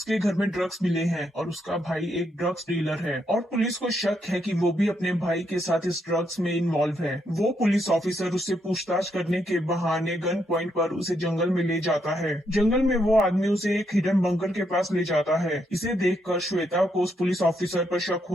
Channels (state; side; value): normal; both; correlation 0.77